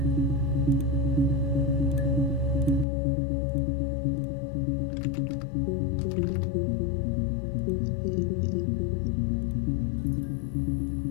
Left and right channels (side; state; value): right; drops out; at 2.9 s